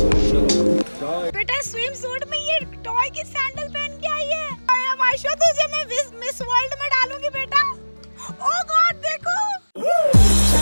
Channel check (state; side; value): inverted; both; correlation -1.00